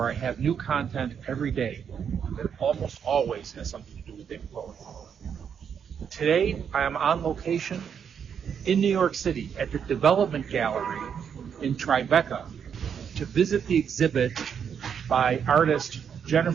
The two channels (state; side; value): quieter; left; 7.6 dB